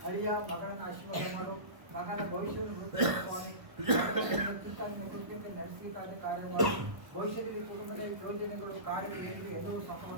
ಅಳಿಯ ಮಗನನ್ನು ಆಶೀರ್ವಾದ ಮಾಡು. ಮಗನ ಭವಿಷ್ಯವನ್ನು ಸ್ವಾಮಿ. ಚಿಂತನೆಯನ್ನು ಕುರಿತಂತೆ ನಡೆಸಲಿಕ್ಕಾದ ಕಾರ್ಯ ಮಾಡು. ಭವಿಷ್ಯದಲ್ಲಿ ಕುಟುಂಬದಲ್ಲಿ ಯೋಜನೆಗಳು ಕಾರ್ಯಗಳು ಎಲ್ಲರೂ ಸಫಲ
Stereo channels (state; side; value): late; left; 1.1 ms